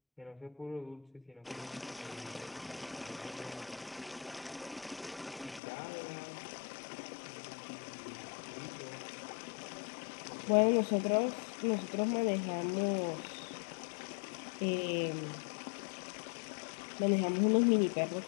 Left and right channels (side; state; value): right; drops out; at 5.6 s